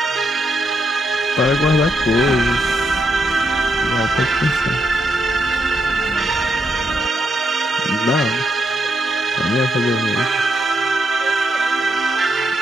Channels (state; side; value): normal; both; correlation 0.79